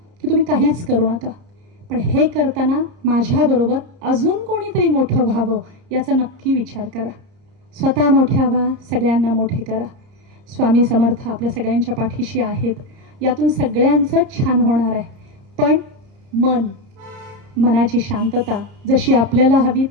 की तुम्ही काहीच करू नका, पण हे करताना माझ्याबरोबर अजून कोणीतरी मोठं व्हावं याचा नक्की विचार करा. स्वतः मोठ्या व्हा, सगळ्यांना मोठे करा. स्वामी समर्थ आपल्या सगळ्यांच्या पाठीशी आहेत. यातून सगळ्यांचं छान होणार आहे. पण मनाची शांतता जशी आपल्याला हवी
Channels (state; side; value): late; left; 31 ms